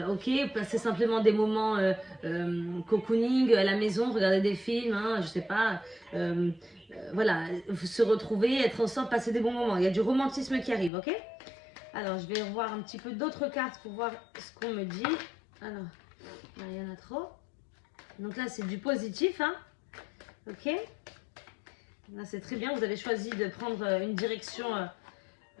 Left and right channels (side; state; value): right; drops out; at 10.9 s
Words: Ok, passer simplement des moments cocooning à la maison, regarder des films, hein, je sais pas, voilà, se retrouver, être ensemble, passer des bons moments. Il y a du romantisme qui arrive, ok. Alors, je vais revoir un petit peu d'autres cartes pour voir ce qu'on me dit. Alors, il y en a trop. Donc là, c'est du positif, hein, ok. Là, c'est très bien, vous avez choisi de prendre une direction,